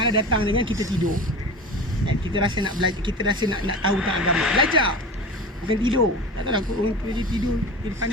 datang dengan kita tidur dan kita rasa nak belajar, kita rasa nak tahu tentang agama. Belajar, bukan tidur. Tak tahu lah orang pergi tidur, dia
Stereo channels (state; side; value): normal; both; correlation 0.33